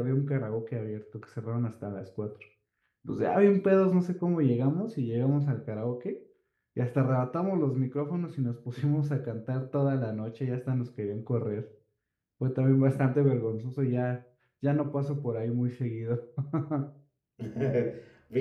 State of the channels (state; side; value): identical; both; correlation 1.00